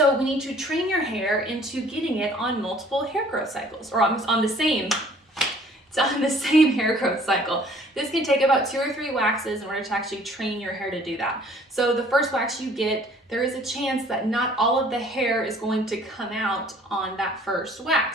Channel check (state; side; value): normal; both; correlation 0.55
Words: we need to train your hair into getting it on multiple hair growth cycles, or on the same hair growth cycle. This can take about 2 or 3 waxes in order to actually train your hair to do that. So the first wax you get, there is a chance that not all of the hair is going to come out on that first